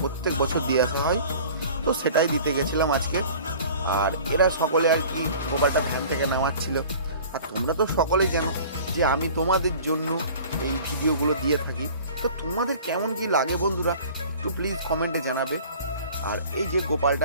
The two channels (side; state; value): both; inverted; correlation -0.45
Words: প্রত্যেক বছর দিয়ে আসা হয়। তো সেটাই দিতে গেছিলাম আজকে। আর এরা সকলে আর কি গোপালটা ভ্যান থেকে নামাচ্ছিল। আর তোমরা তো সকলেই জানো যে আমি তোমাদের জন্য এই ভিডিওগুলো দিয়ে থাকি। তো তোমাদের কেমন কি লাগে বন্ধুরা, একটু প্লিজ কমেন্টে জানাবে। আর এই যে